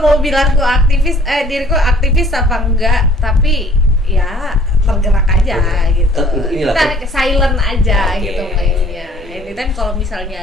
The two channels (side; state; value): both; normal; correlation 0.55